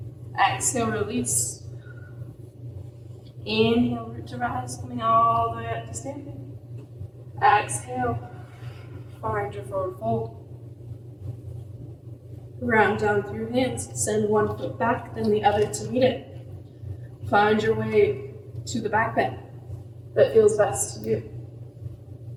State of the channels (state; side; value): identical; both; correlation 1.00